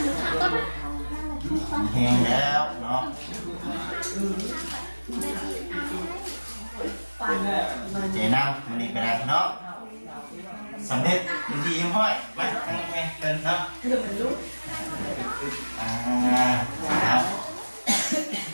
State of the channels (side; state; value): both; inverted; correlation -1.00